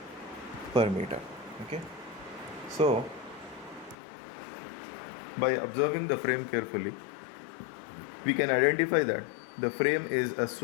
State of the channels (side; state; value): right; drops out; at 4.0 s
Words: per meter. Okay, so by observing the frame carefully, we can identify that the frame is a